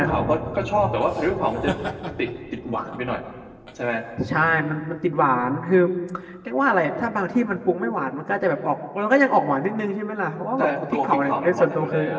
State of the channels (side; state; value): both; identical; correlation 1.00